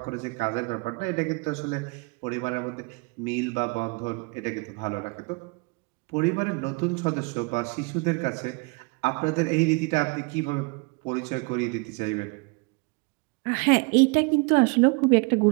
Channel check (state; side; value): quieter; left; 29.7 dB